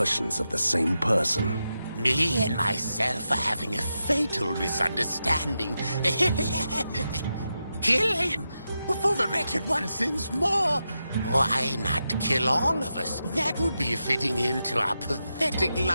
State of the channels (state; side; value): inverted; both; correlation -0.88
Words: of the same person? Me and myself are having a fatal misunderstanding. Kill him before the wretched one sins more. Why not kill all of us? That would be a fitting end to our pathetic